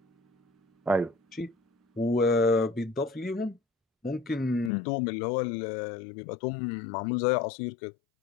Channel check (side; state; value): right; drops out; at 4.7 s